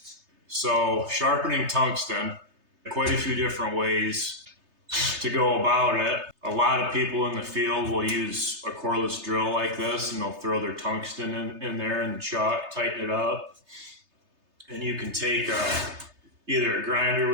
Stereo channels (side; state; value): left; late; 3.3 ms